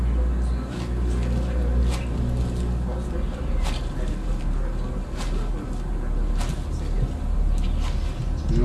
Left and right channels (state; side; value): identical; both; correlation 1.00